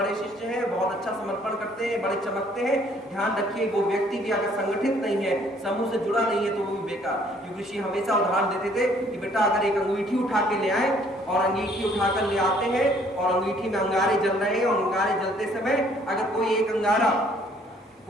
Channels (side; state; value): both; normal; correlation 0.61